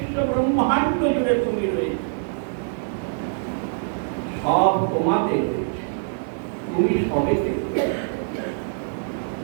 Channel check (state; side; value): silent; left; digital silence